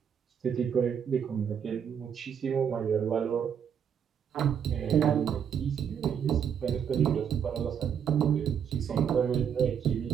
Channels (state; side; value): quieter; left; 8.0 dB